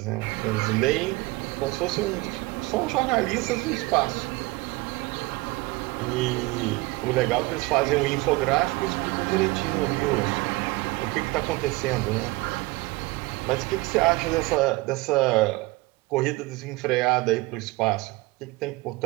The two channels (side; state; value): left; quieter; 22.4 dB